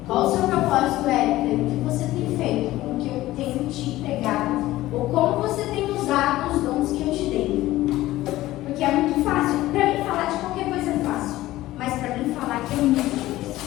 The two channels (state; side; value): quieter; right; 16.3 dB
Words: qual o seu propósito é, o que você tem feito com o que eu tenho te entregado, ou como você tem usado os dons que eu te dei. Porque é muito fácil, para mim falar de qualquer coisa é fácil, mas para mim falar que é muito difícil.